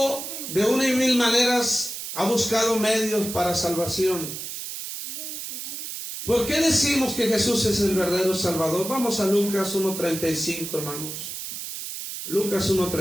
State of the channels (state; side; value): noise; right; hiss, 7 dB below the sound